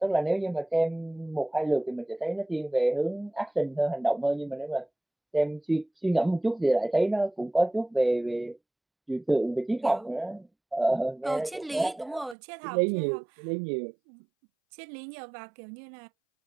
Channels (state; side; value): drops out; left; at 12.4 s